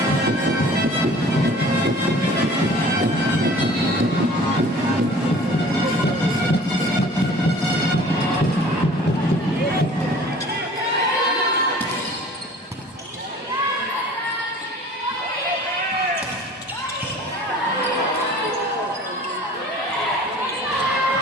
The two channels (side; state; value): both; normal; correlation 0.48